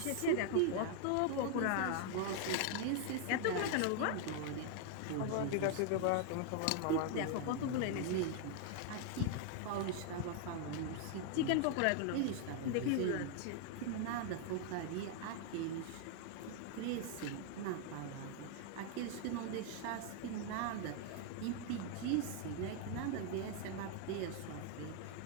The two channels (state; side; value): different; both; correlation 0.00